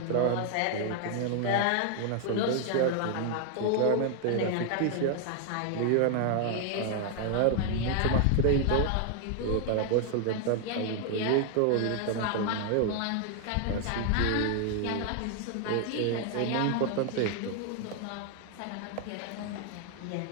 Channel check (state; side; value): different; both; correlation 0.00